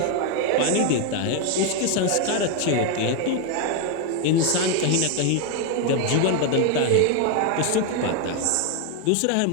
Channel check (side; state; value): both; different; correlation 0.01